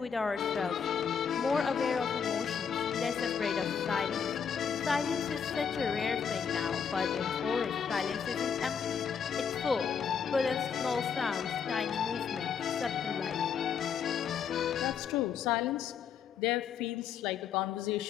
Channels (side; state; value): right; quieter; 7.0 dB